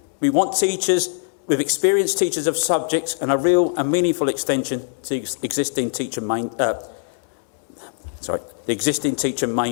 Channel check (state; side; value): silent; right; 64 dB below the other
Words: We want teachers with experienced teachers of subjects and a real and meaningful extension to the existing teacher main